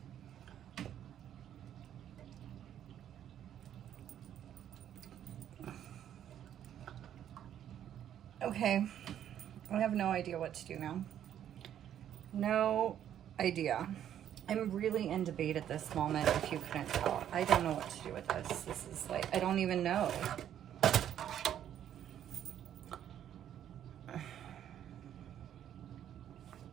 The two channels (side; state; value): left; quieter; 10.3 dB